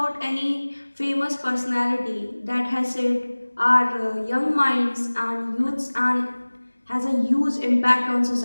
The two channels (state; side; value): inverted; both; correlation -1.00